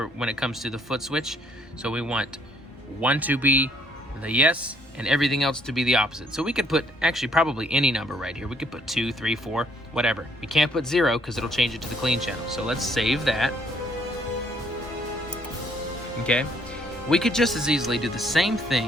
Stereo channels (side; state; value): both; normal; correlation 0.65